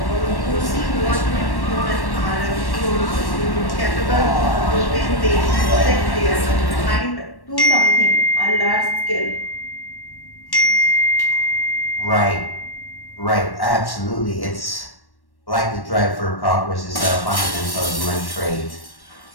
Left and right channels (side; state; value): right; late; 1.1 ms